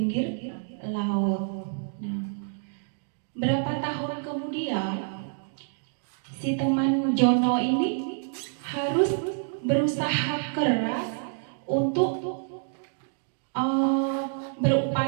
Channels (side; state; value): left; silent; digital silence